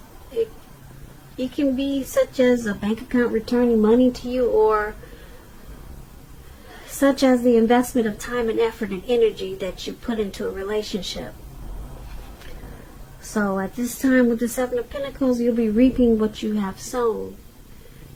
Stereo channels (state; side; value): identical; both; correlation 1.00